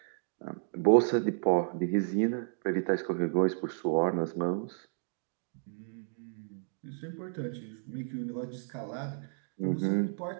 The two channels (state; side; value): silent; left; digital silence